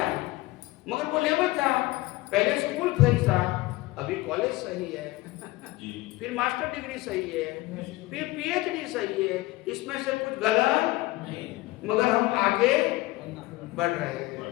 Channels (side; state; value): right; quieter; 19.7 dB